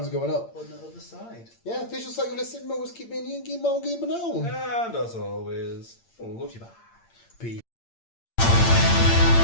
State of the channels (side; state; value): right; late; 8.7 ms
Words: going up. On the other side. Yeah, visuals like you're listening. Always keep me in. Give me now. And as always, love you back.